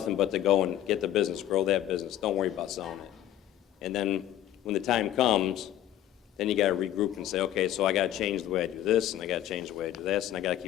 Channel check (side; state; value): right; quieter; 12.2 dB